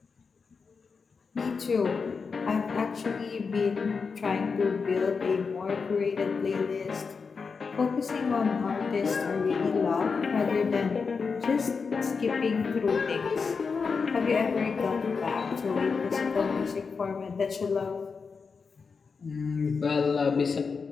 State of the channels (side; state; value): right; quieter; 5.2 dB